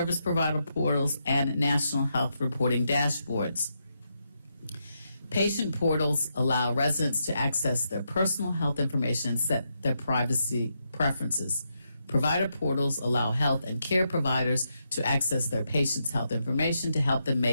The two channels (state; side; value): inverted; both; correlation -0.82